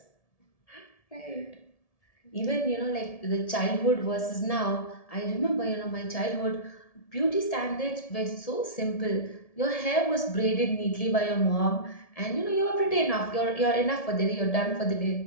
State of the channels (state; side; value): late; right; 1.7 ms